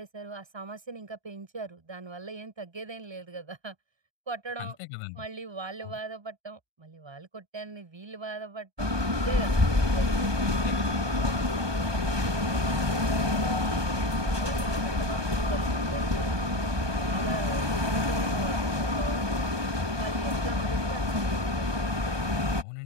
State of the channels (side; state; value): left; late; 1.2 ms